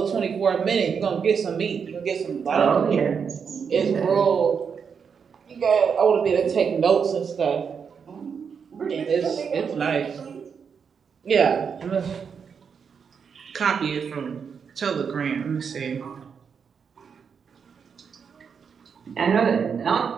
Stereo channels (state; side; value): quieter; left; 6.5 dB